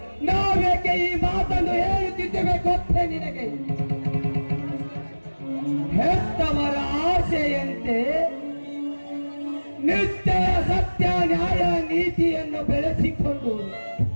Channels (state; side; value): inverted; both; correlation -1.00